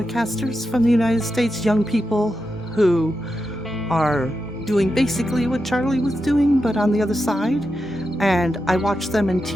from the United States, young people who are doing basically what Charlie was doing, but on the other side. And I watched them in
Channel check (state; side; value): normal; both; correlation 0.88